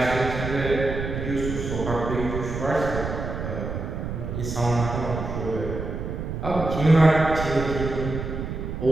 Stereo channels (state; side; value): noise; right; rumble, 5 dB below the sound